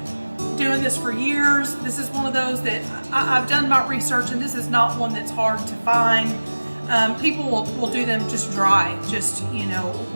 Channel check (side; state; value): both; inverted; correlation -1.00